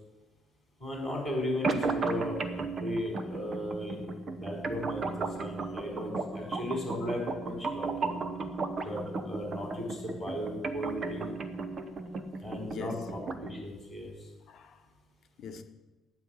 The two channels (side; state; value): both; normal; correlation 0.72